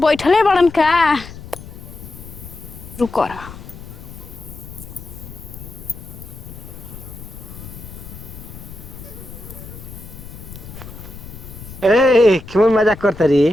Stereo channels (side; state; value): left; noise; rumble, 14 dB below the sound